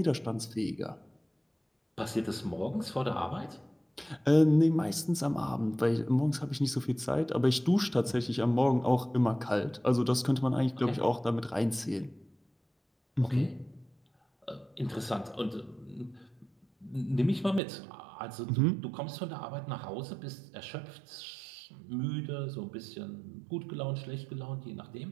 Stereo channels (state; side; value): drops out; left; at 17.6 s